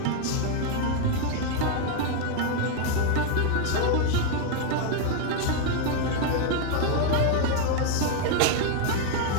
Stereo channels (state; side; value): different; both; correlation 0.00